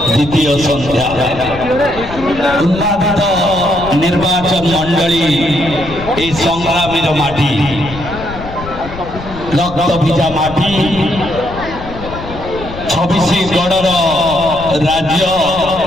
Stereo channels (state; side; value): noise; left; rumble, 13 dB below the sound